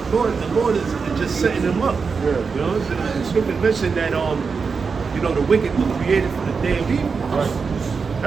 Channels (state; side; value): quieter; left; 5.2 dB